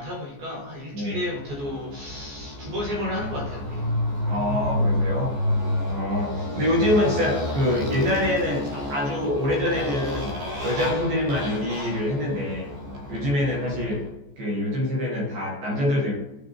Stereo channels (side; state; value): left; late; 14 ms